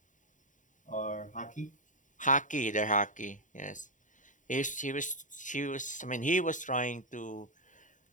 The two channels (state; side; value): late; right; 0.37 ms